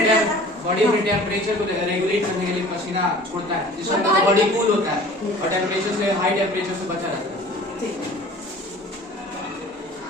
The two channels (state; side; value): normal; both; correlation 0.46